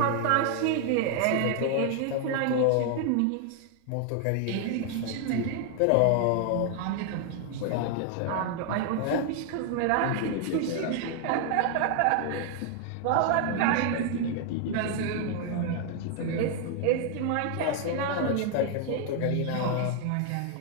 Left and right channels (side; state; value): both; different; correlation 0.00